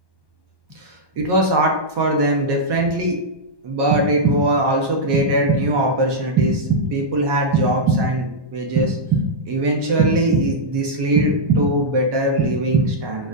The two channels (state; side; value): late; left; 1.2 ms